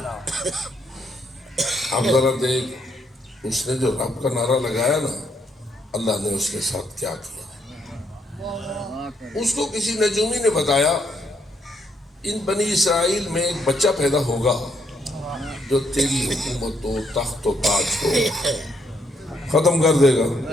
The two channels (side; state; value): both; normal; correlation 0.73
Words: اب ذرا دیکھ، اس نے جو رب کا نعرہ لگایا نا، اللہ نے اس کے ساتھ کیا کیا۔ اس کو کسی نجومی نے بتایا ان بنی اسرائیل میں ایک بچہ پیدا ہوگا جو تیری حکومت و تخت و تاج کو ختم کر دے گا۔